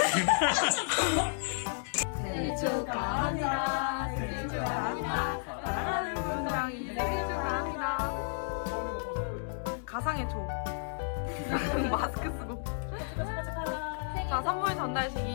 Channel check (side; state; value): right; silent; digital silence